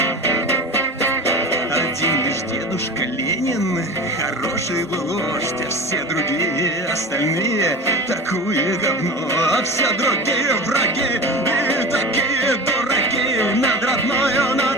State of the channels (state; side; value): normal; both; correlation 0.32